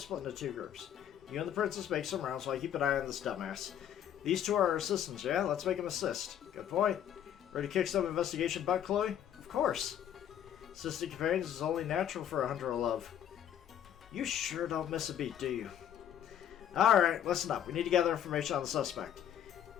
into 2 groups. You and the princess make some rounds while I keep an eye on this dumbass. These 2 are our assistants, yeah? Let's make them assist. Good point. Ready to kick some investigation butt, Chloe? Of course. Assistant companions is only natural for a hunter of love. You sure don't miss a beat, do you? Alright, listen up. We need to gather information on the suspect.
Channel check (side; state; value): right; quieter; 9.9 dB